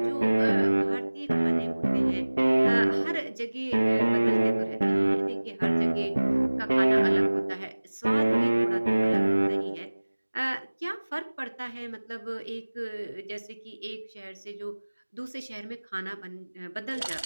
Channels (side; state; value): both; inverted; correlation -1.00